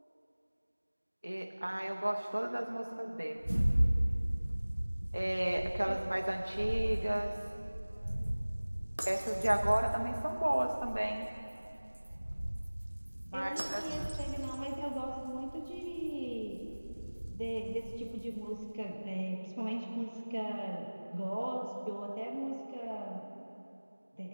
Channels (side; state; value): both; inverted; correlation -1.00